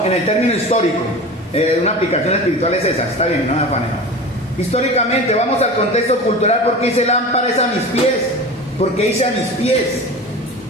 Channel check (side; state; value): both; normal; correlation 0.33